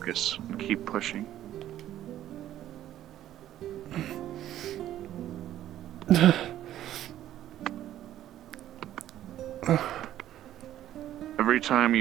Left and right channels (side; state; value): left; quieter; 12.4 dB